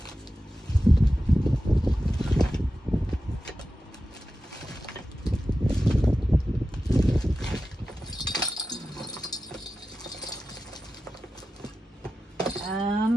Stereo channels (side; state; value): both; normal; correlation 0.93